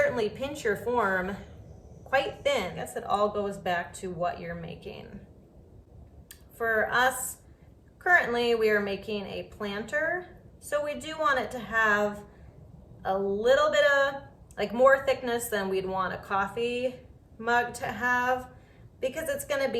pinch your form quite thin. I guess it all goes back to what you're making. For us, currently we are making a planter, so we do want it to have a little bit of, like, more thickness than we'd want a coffee mug to have, because it's going to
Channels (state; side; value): identical; both; correlation 1.00